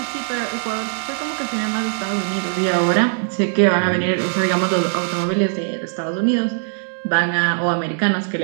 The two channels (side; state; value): left; silent; digital silence